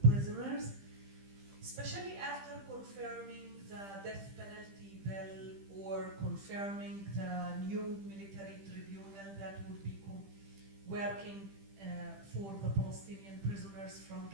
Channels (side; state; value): left; late; 15 ms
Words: prisoners, especially after confirming the death penalty bill or confirming the new military tribunal that would be working for the Palestinian prisoners from